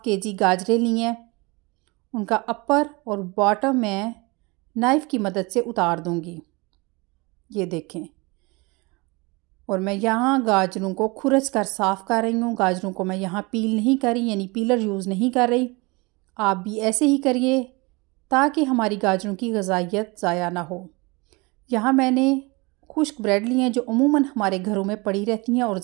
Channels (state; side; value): quieter; left; 26.1 dB